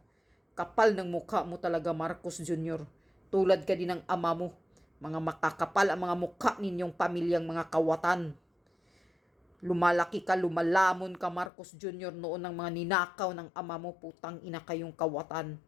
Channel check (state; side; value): drops out; right; at 11.5 s